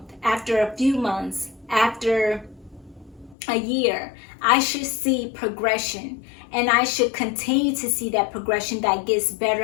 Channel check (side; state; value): right; drops out; at 3.4 s